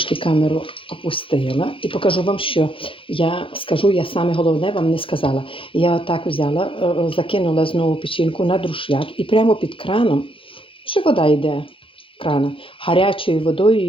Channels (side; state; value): right; late; 0.26 ms